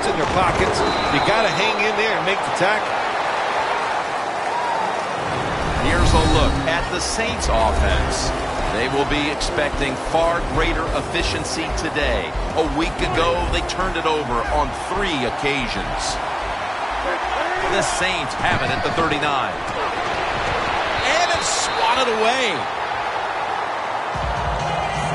in their pockets. You got to hang in there and make the tackle. Here's a look at the Saints offense. They will be expecting far greater efficiency today. A week ago, they turned it over on 3 occasions. The Saints have it at the 39. And it's swatted away.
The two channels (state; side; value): identical; both; correlation 1.00